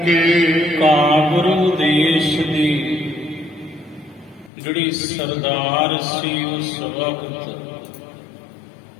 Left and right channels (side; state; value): right; drops out; at 4.5 s